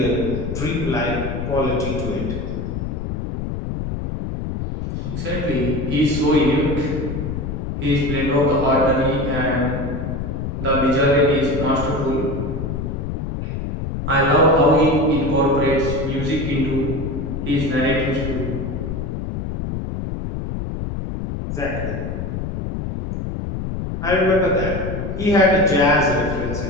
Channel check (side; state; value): left; noise; rumble, 4 dB below the sound